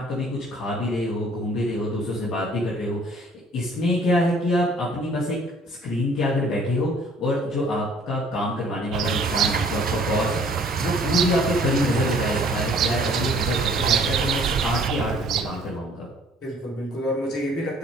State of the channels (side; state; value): both; normal; correlation 0.56